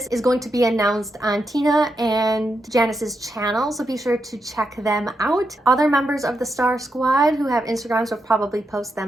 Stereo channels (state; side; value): normal; both; correlation 0.84